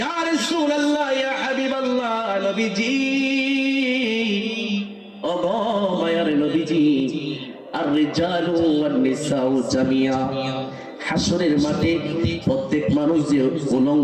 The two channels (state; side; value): identical; both; correlation 1.00